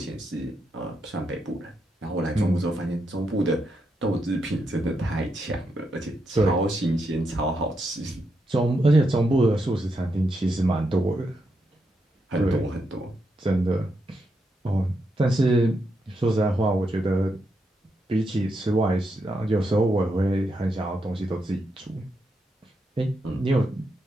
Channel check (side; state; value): both; normal; correlation 0.82